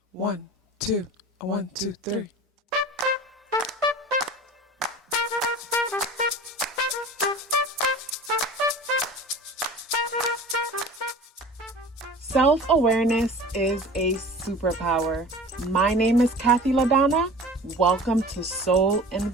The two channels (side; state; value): both; normal; correlation 0.40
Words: 1, 2, 1, 2, 3. Self-awareness is a superpower. My name is KathyLaDonna. Welcome to Soul and